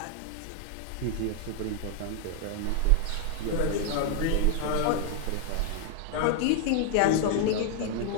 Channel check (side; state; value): both; different; correlation 0.00